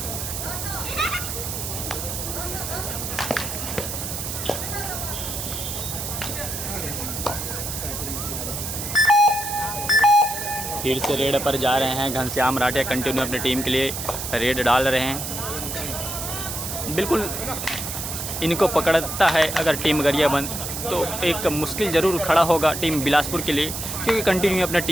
फिर से रेड पर जा रहे हैं घनश्याम राठिया, कंटिन्यू अपनी टीम के लिए रेड डाल रहे हैं। बिल्कुल इनको पकड़ता है अगर टीम गरियाबंद तो एक मुश्किल जरूर खड़ा होगा टीम बिलासपुर के लिए, क्योंकि कंटिन्यू अपने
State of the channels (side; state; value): right; noise; hiss, 5 dB below the sound